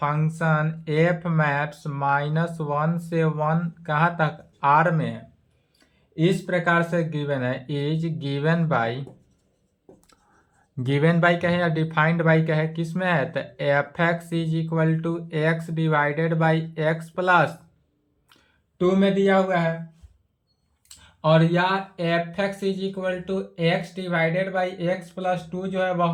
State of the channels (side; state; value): both; identical; correlation 1.00